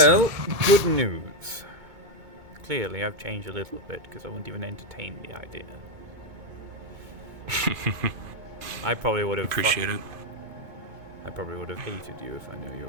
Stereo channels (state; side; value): late; left; 2.2 ms